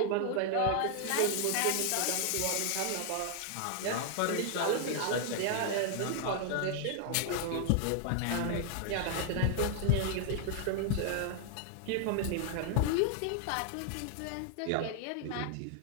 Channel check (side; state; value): both; different; correlation 0.00